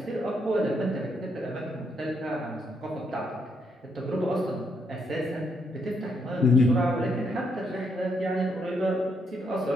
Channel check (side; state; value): both; normal; correlation 0.76